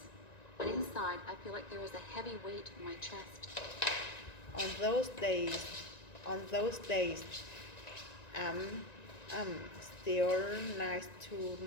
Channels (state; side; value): late; right; 1.9 ms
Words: but inside I feel like there is a heavy weight in my chest. On those days, I'm still nice to